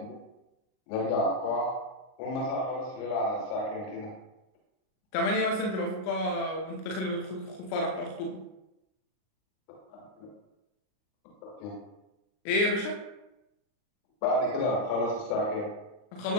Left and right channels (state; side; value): late; right; 39 ms